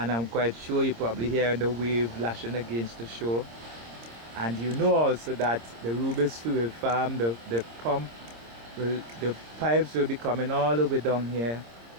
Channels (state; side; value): late; left; 26 ms